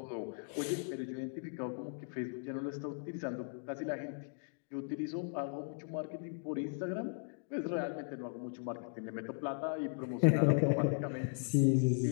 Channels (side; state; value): right; silent; digital silence